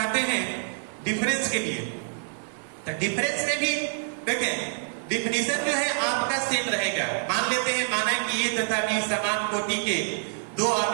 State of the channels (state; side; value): silent; left; digital silence